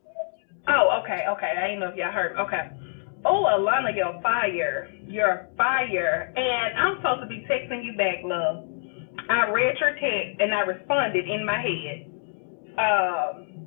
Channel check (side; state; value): right; silent; digital silence